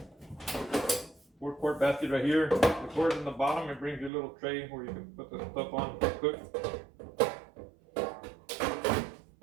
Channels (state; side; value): drops out; left; at 4.1 s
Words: 4-quart basket right here. The cord in the bottom, it brings you a little tray where you can put the stuff on to cook.